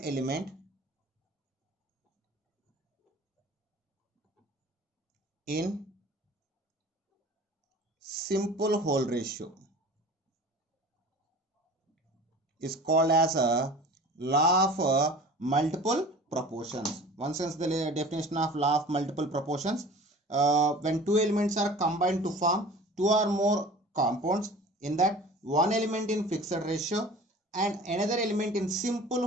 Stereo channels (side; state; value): both; normal; correlation 0.42